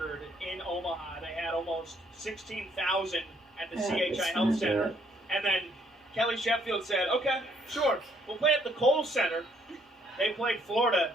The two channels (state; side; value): normal; both; correlation 0.68